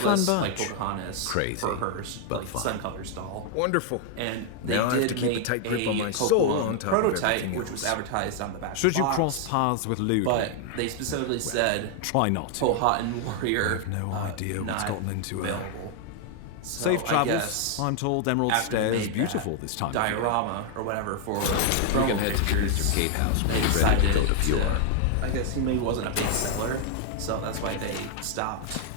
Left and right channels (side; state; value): both; different; correlation 0.00